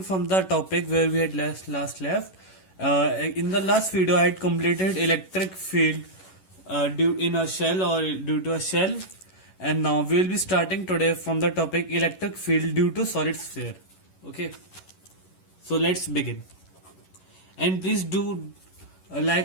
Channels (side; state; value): right; late; 11 ms